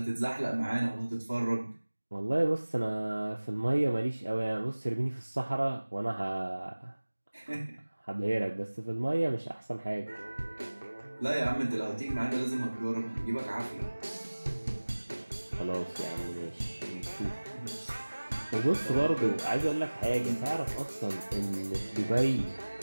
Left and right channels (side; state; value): both; inverted; correlation -1.00